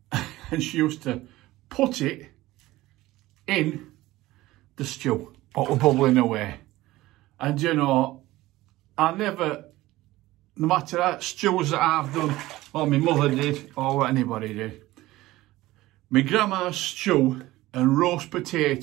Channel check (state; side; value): quieter; left; 17.6 dB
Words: And she used to put it in the stew, what was bubbling away. And you know, I never, no matter how stews that I've done, or my mother did, or what anybody did, my grandma's stew and roast